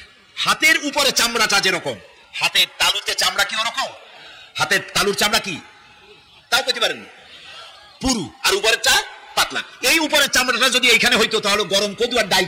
হাতের উপরে চামড়াটা যেরকম, হাতের তালুতে চামড়া কি ওরকম? হাতের তালুর চামড়া কি তাও পেতে পারেন পুরু, আর উপরের চা পাতলা। এই উপরের চামড়াটা যদি এইখানে হইতো তাহলে গরম কদু আর ডাল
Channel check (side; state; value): both; identical; correlation 1.00